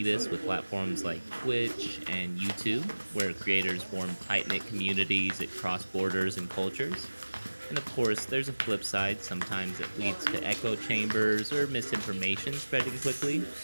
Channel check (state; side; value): inverted; both; correlation -1.00